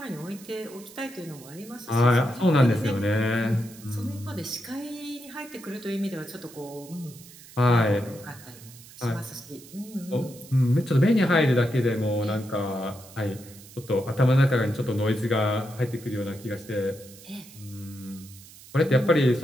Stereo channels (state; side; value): noise; right; hiss, 20 dB below the sound